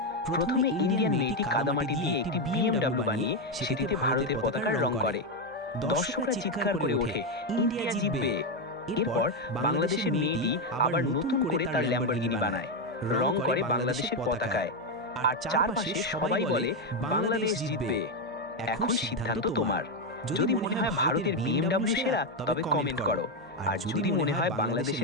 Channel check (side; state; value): both; normal; correlation 0.06